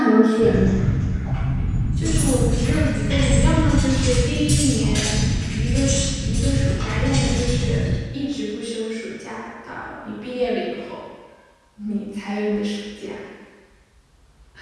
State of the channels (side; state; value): both; identical; correlation 1.00